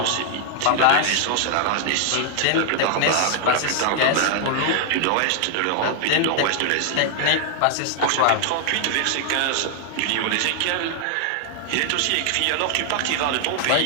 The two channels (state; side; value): different; both; correlation 0.00